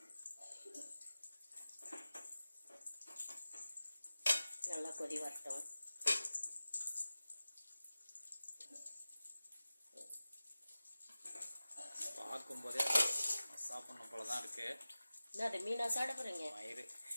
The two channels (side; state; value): both; inverted; correlation -0.97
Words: நல்லா கொதி வரட்டும். பார்க்கும்போதே சாப்பிடணும் போல தான் இருக்கு. அது மீனா சாப்பிட போகிறீங்க? மயிறு